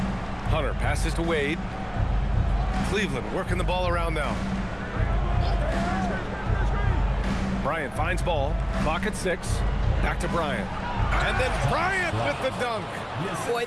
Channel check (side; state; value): both; identical; correlation 1.00